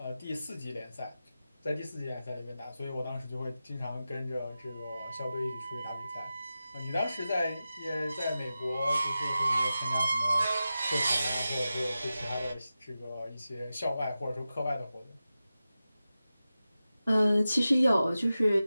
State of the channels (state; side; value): inverted; both; correlation -0.93